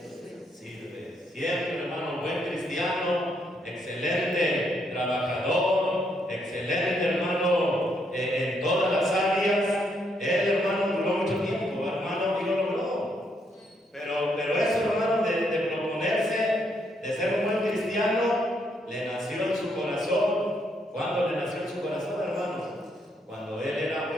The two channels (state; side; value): normal; both; correlation 0.75